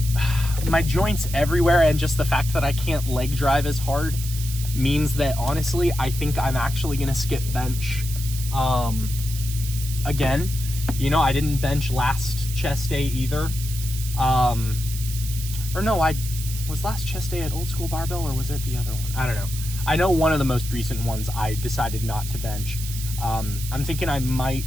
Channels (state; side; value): noise; right; hiss, 10 dB below the sound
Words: joints everywhere, and just the fact that I can't leg drive as hard means that, honestly, I think I'm actually going to skip bench again. You know, I didn't bench last chest day either. Or no, was last chest day at Old School Barbell, or was it the other one? I don't know. I know one of the most recent ones I decided not to bench. I'm thinking I